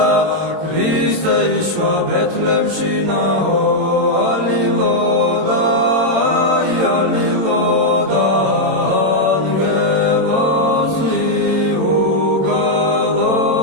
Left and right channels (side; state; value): left; late; 22 ms